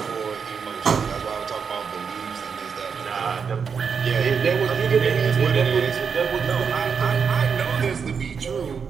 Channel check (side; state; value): left; quieter; 6.2 dB